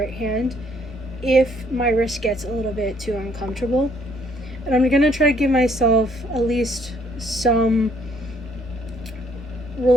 hand if my wrist gets a little bit too uncomfortable. And I'm gonna try to give myself at least some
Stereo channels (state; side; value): normal; both; correlation 0.65